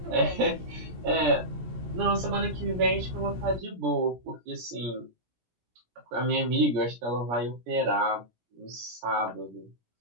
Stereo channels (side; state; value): left; late; 17 ms